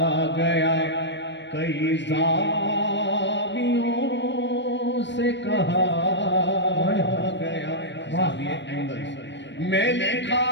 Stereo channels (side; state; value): right; late; 0.52 ms